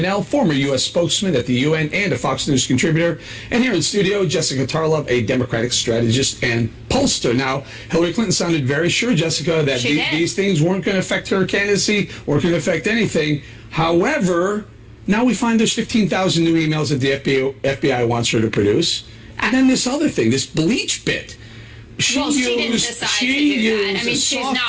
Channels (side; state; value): both; identical; correlation 1.00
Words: former U.S. spokesman at the UN and a Fox News contributor. And here in studio, Jessica Tarlov, a Democratic strategist and pollster. Now, Hillary Clinton sounded very sure, Jessica, that these things weren't going to affect her candidacy or going to affect anything. However, now we find there's 15,000 new emails that the FBI wants her to produce. And then this other thing, this bleach bit. She didn't decide to do that. I mean, she's not